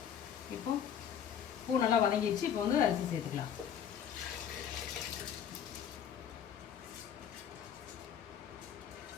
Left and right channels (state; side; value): quieter; right; 8.6 dB